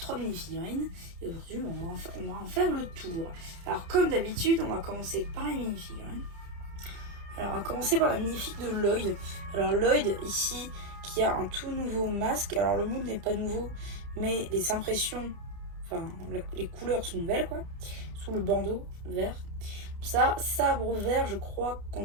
mini-figurines. Et aujourd'hui on va en faire le tour. Alors comme d'habitude on va commencer par les mini-figurines. Alors on va commencer par la magnifique de Lloyd. Alors Lloyd ici qui a un tout nouveau masque. Alors le monde n'est pas nouveau mais les impressions, enfin les couleurs sont nouvelles quoi. Sous le bandeau vert. Ça, sabre vert, je crois qu'on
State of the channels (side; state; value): left; late; 30 ms